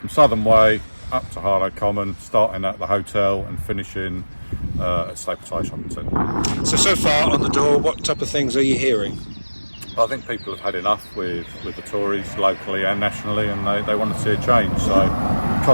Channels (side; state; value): both; inverted; correlation -1.00